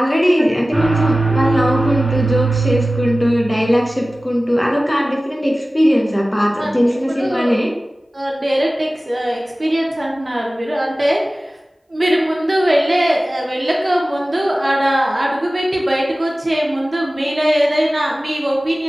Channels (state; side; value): normal; both; correlation 0.96